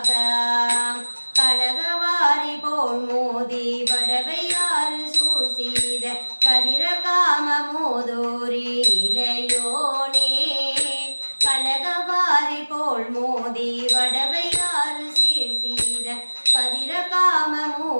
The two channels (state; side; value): inverted; both; correlation -1.00